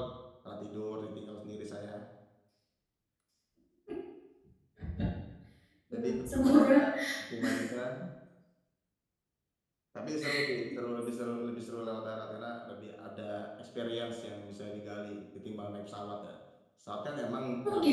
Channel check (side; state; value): both; identical; correlation 1.00